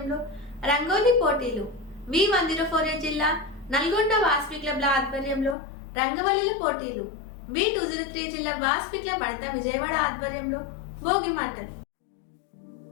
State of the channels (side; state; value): right; drops out; at 5.6 s